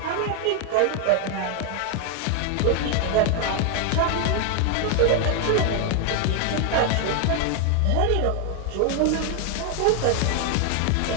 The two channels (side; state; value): both; different; correlation 0.01